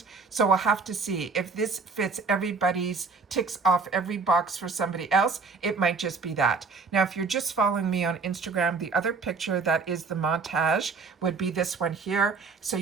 So we'll have to see if this fits everybody's, ticks off every box for somebody else. It might just be that. Now, if you're just following me on Instagram, the other picture that is the montage would be this one here. So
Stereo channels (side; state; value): left; quieter; 4.6 dB